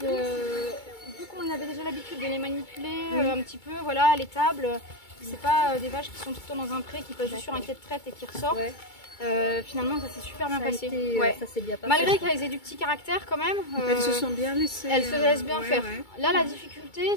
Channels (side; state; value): right; late; 2.3 ms